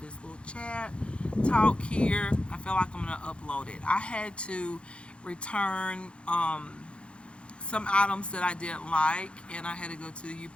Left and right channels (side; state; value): right; late; 0.058 ms